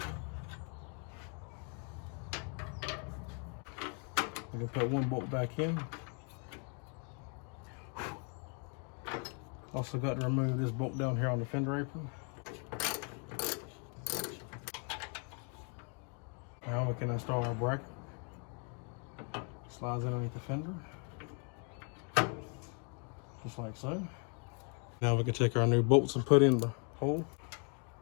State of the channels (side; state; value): right; quieter; 38.9 dB